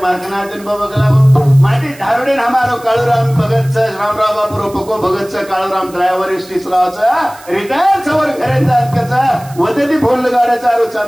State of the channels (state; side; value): noise; right; hiss, 22 dB below the sound